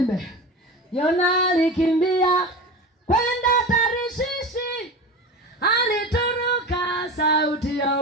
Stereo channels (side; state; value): both; normal; correlation 0.29